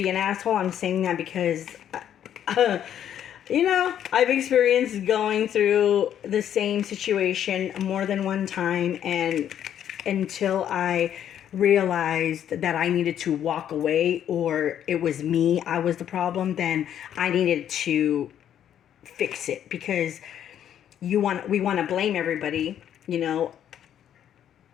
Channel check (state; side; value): quieter; right; 10.0 dB